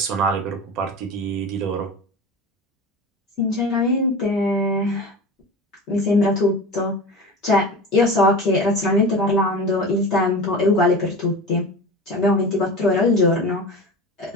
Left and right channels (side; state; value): both; normal; correlation 0.31